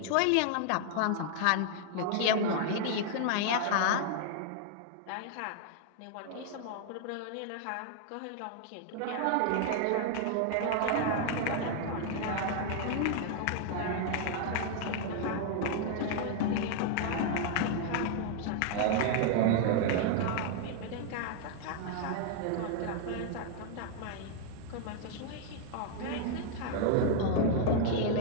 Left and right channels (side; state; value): both; different; correlation 0.00